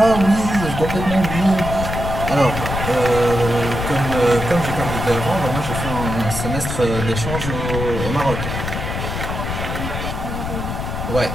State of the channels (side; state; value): left; noise; rumble, 4 dB below the sound